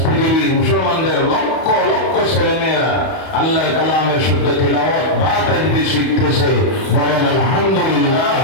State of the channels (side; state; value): right; late; 31 ms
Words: পৃথিবীর মুসলমানদের লক্ষ লক্ষ ছেলেমেয়েরা আল্লাহর কালামের শুদ্ধ তিলাওয়াত বা তাজবিদ শিখতেছে। বলেন আলহামদুলিল্লাহ।